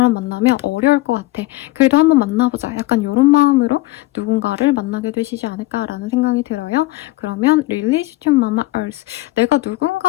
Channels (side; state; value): right; quieter; 19.2 dB